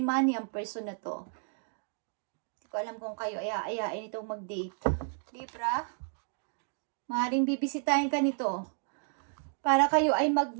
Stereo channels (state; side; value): silent; left; 55 dB below the other